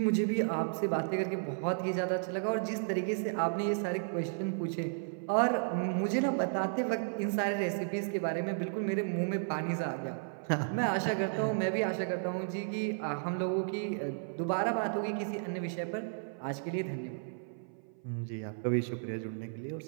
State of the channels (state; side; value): silent; left; 55 dB below the other